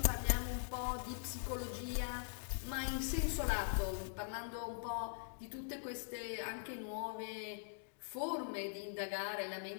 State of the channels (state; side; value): silent; right; digital silence